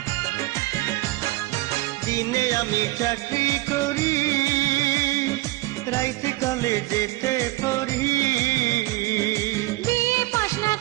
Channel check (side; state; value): left; quieter; 19.2 dB